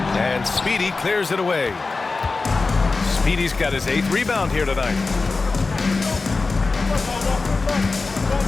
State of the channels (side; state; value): right; quieter; 3.9 dB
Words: And Speedy clears it away. Speedy's got his 8th rebound here tonight.